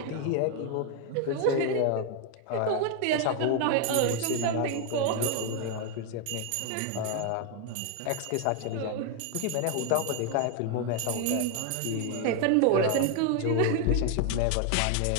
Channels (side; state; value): both; different; correlation 0.01